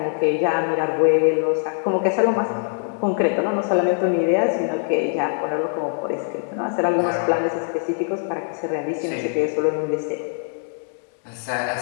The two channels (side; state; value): right; silent; 63 dB below the other